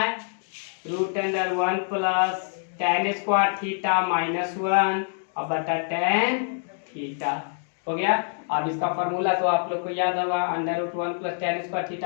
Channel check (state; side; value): silent; right; 61 dB below the other